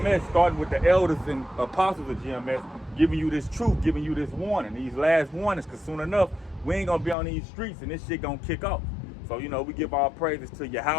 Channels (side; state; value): right; drops out; at 7.2 s